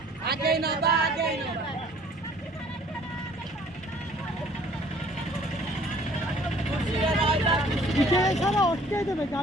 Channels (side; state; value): both; normal; correlation 0.55